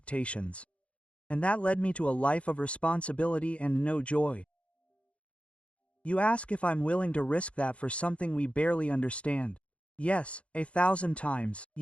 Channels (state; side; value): late; right; 0.061 ms